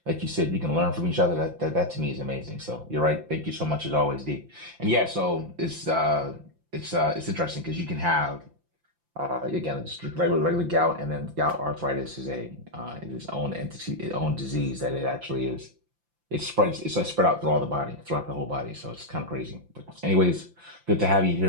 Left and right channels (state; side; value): late; left; 5.8 ms